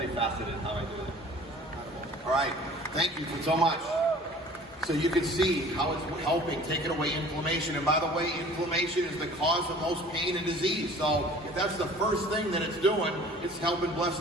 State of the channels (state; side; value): normal; both; correlation 0.48